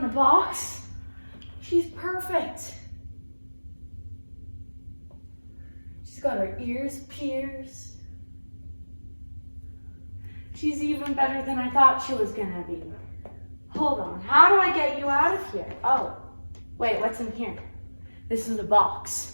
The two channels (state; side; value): inverted; both; correlation -1.00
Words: the box. She's perfect. She's got her ears pierced. She's even better than I thought she was gonna be. Hold on, how do I get you out of here? Oh, wait, what's in here? This is a box.